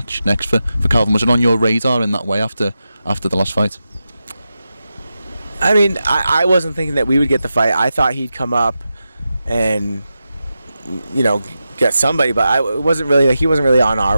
next for Calvin? Was it on your radar in that way after the last fight? I mean, I wasn't thinking that we would get the fight. I thought he'd come up and, get somebody, but he wasn't really on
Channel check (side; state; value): both; inverted; correlation -0.90